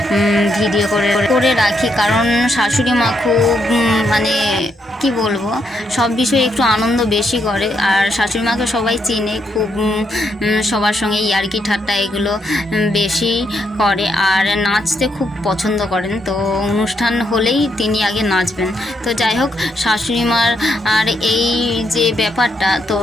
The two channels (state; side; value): normal; both; correlation 0.77